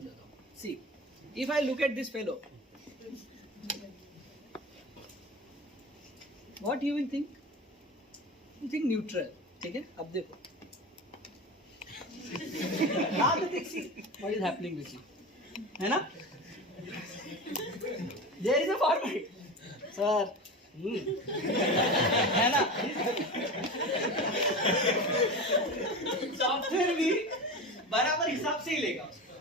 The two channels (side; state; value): both; normal; correlation 0.28